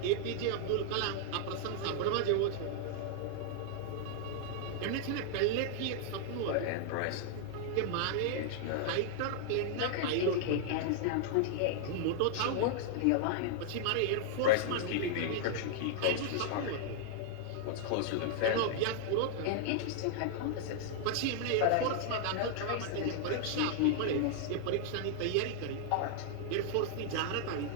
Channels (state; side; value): different; both; correlation -0.01